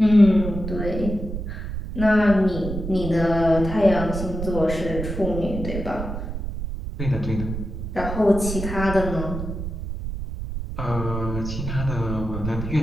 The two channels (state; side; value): noise; right; rumble, 6 dB below the sound